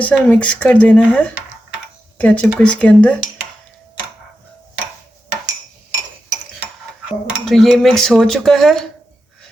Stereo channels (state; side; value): normal; both; correlation 0.89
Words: सा मिक्स कर देना है केचप को इसके अंदर। तो ये मिक्स हो चुका है